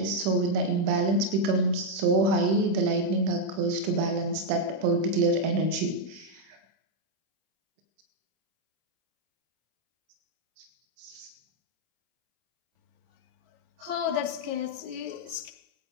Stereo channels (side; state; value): left; late; 26 ms